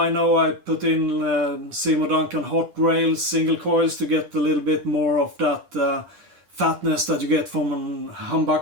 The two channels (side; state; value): left; late; 10 ms